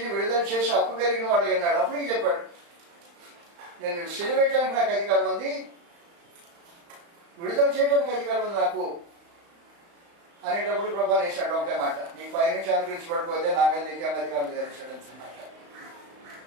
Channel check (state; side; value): late; left; 35 ms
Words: విడుదల చేసి హక్కు కలిగిన వాడు అన్నాడు. అప్పటికి చెప్పాడు, నేను సిలువేయడానికి నాకు అధికారం ఉంది, విడుదల చేయడానికి అధికారం ఉంది నాకు అనేటప్పుడు ప్రభా వేసాడు ఒకటే మాట, నీకు పైనుంచి అనుకరించబడిపోతే నా మీద నీకేం అధికారం తెలిసాడు అంటున్నమాట.